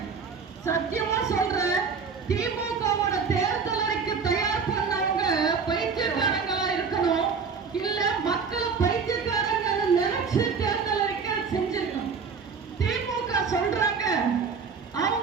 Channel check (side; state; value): left; quieter; 5.5 dB